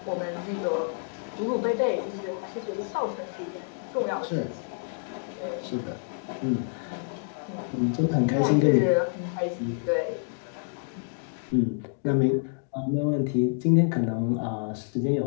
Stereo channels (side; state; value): right; silent; 59 dB below the other